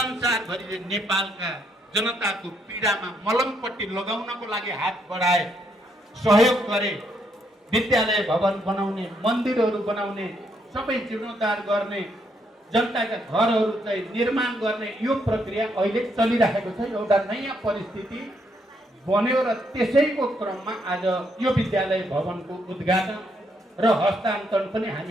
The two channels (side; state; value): both; normal; correlation 0.74